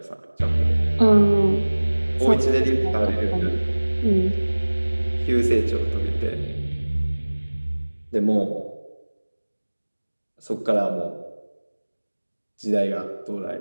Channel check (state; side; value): inverted; both; correlation -1.00